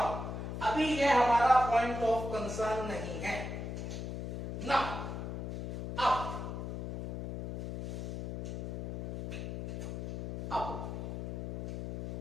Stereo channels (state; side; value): noise; left; hum, 4 dB below the sound